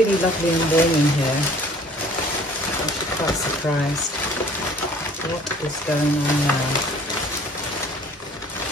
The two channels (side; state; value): both; normal; correlation 0.52